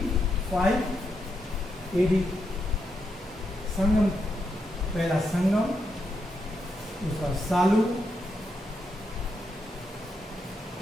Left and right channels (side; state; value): both; normal; correlation 0.82